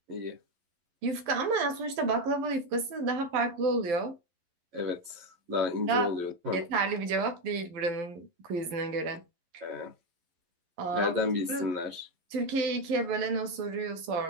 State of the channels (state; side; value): late; left; 11 ms